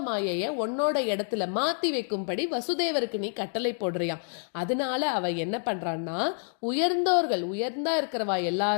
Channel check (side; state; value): right; silent; 59 dB below the other